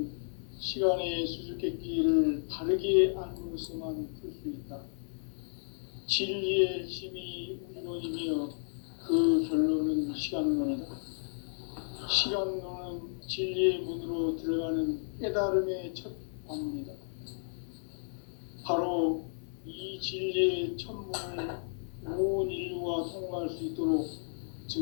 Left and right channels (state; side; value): silent; right; 56 dB below the other